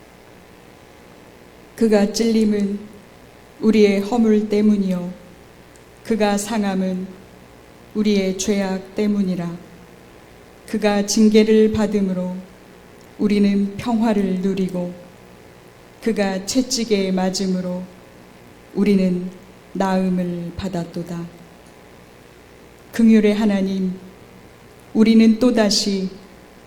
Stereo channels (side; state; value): both; identical; correlation 1.00